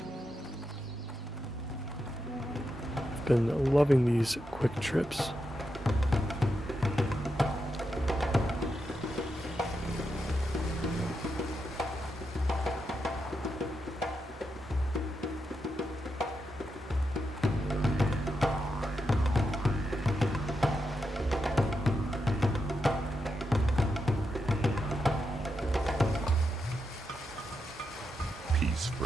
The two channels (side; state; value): both; normal; correlation 0.85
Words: I've been loving these quick trips.